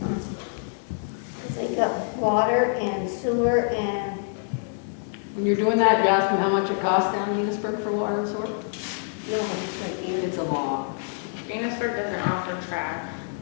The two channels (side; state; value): right; silent; digital silence